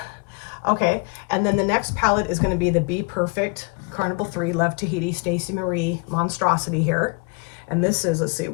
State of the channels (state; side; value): quieter; right; 32.1 dB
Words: Okay, and then the next palette is going to be the Be Perfect Carnival 3 Love Tahiti Stacey Marie Monstrosity here. And this is, let's see,